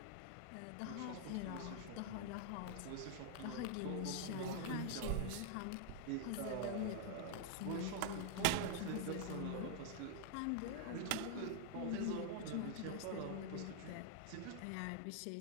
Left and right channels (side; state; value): both; different; correlation 0.00